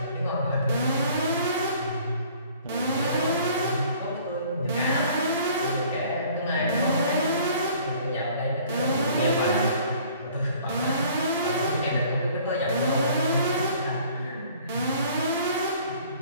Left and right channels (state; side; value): inverted; both; correlation -0.54